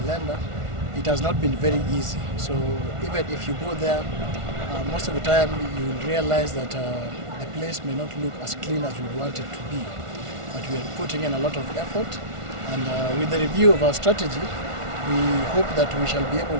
It has not been very easy. So even if you go there, most of the time you will realize that the place may not look as clean as we want it to be. But we are putting in a lot of effort, and with the review of our strategy, we hope that we shall be able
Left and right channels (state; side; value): late; left; 1.4 ms